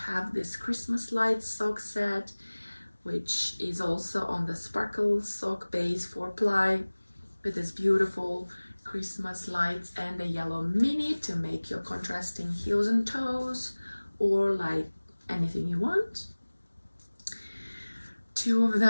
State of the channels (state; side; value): inverted; both; correlation -1.00